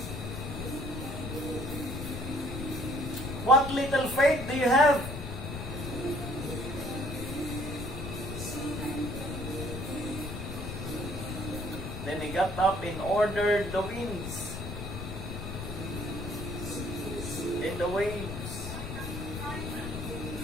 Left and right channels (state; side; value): noise; left; rumble, 6 dB below the sound